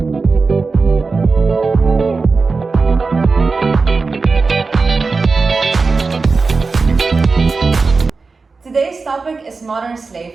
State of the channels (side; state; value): left; quieter; 4.2 dB